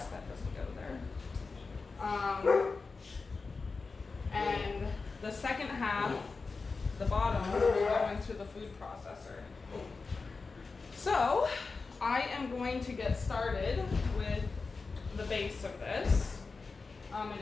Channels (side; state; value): right; quieter; 4.3 dB